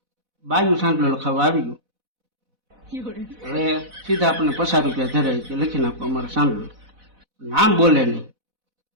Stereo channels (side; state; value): left; late; 4.0 ms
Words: બાયું સાંજલો લખાવા આવી ગયું. હવે સીધા આપણને 50 રૂપિયા ધરાય કે લખી નાખો અમારો સાંજલો, નામ બોલે નહીં.